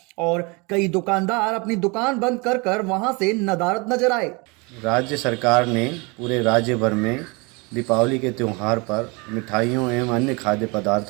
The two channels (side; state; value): left; quieter; 28.4 dB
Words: और कई दुकानदार अपनी दुकान बंद कर वहां से नदारद नजर आए। राज्य सरकार ने पूरे राज्य भर में दीपावली के त्यौहार पर मिठाइयों एवं अन्य खाद्य